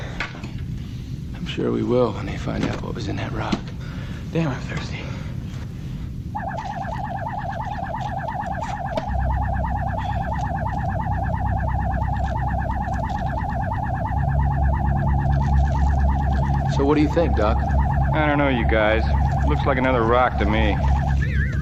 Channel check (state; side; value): identical; both; correlation 1.00